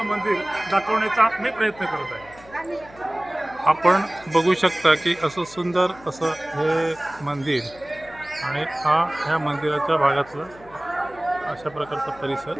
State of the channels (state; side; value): noise; left; hum, 23 dB below the sound